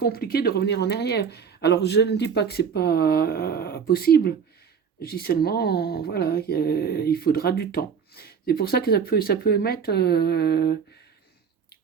de revenir en arrière. Alors, je ne dis pas que c'est pas possible. Je dis seulement, voilà, il faudra du temps. C'est pour ça que ça peut mettre,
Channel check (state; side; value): quieter; left; 6.7 dB